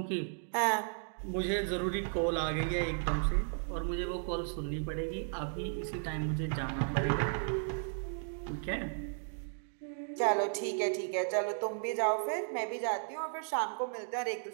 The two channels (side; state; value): left; silent; digital silence